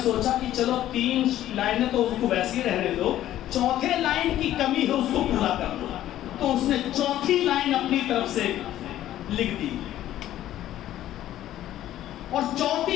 سوچا کہ چلو 3 لائنیں تو اس کو ویسے ہی رہنے دو، چوتھے لائن کی کمی ہے اس کو پورا کر دو، تو اس نے چوتھی لائن اپنی طرف سے لکھ دی، اور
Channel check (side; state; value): right; quieter; 13.0 dB